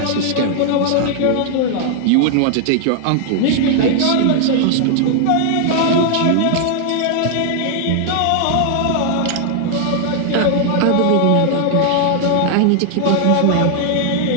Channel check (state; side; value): different; both; correlation 0.00